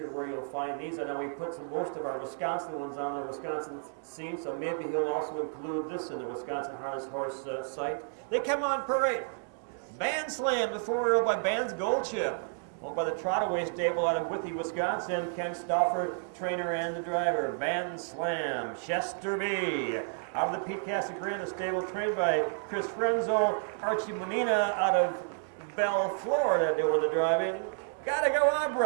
where you'll find these. I know we put most of our Wisconsin ones on the Wisconsin scene, so maybe he'll also include this in the Wisconsin Harness Horse site. They come on parade. BANDSLAM, the 4-year-old by Band's Gold Chip. Owned by the Trotaway stable out of Withee, Wisconsin. Ken Stauffer, trainer and the driver. BANDSLAM, Chester B. Out of the Pete Casagrande stable, trained by Chris Frenzel. Archie Manina out of Bell, Florida, doing the driving. Gotta Go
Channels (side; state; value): left; silent; digital silence